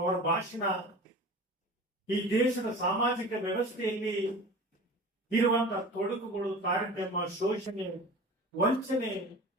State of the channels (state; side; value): normal; both; correlation 0.37